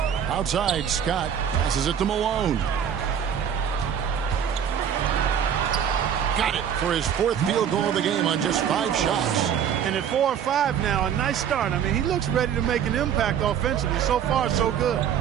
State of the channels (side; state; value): left; quieter; 8.5 dB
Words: Outside, Scott passes it to Malone. Got it for his fourth field goal of the game on just 5 shots. And at 4 or 5 now, a nice start. I mean, he looks ready to make an impact offensively. So far, so good.